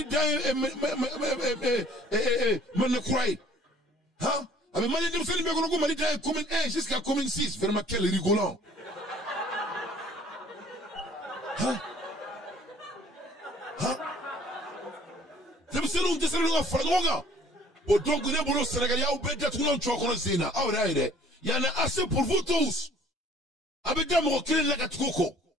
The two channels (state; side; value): normal; both; correlation 0.54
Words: d'Aïb Manekoué. Hein? Avec Malien d'Imselim Bekonoko Mali d'Aïb commune 1 jusqu'à commune 6. Vraiment quel rigolant. Hein? Hein? C'est donc il y en a assez pour vous tous. Avec des mots qui la gatoko.